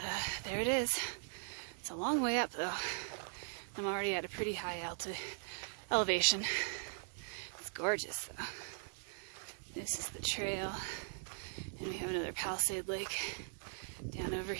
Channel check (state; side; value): silent; left; digital silence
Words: there it is. It's a long way up though. I'm already at a pretty high elevation. It's gorgeous though. This is the trail, and we have another Palisade Lake down over